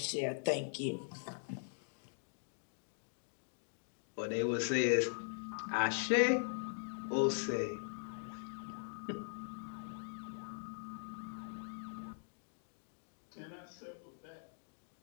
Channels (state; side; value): silent; right; digital silence